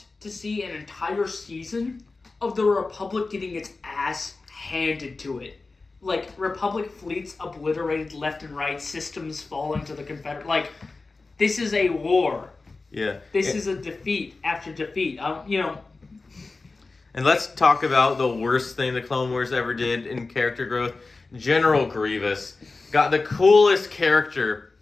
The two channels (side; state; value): right; quieter; 3.7 dB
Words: to see an entire season of the Republic getting its ass handed to it. Republic fleets obliterated left and right, systems falling to the Confederate. This is a war. Yeah. This is a defeat after defeat. And let's talk about the worst thing the Clone Wars ever did in character growth. General Grievous got the coolest character